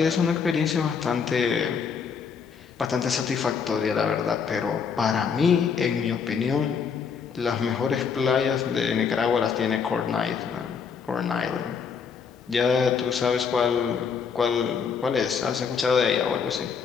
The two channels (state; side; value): quieter; right; 6.3 dB